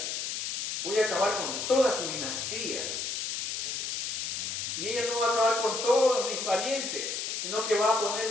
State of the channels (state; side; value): noise; left; hiss, 3 dB below the sound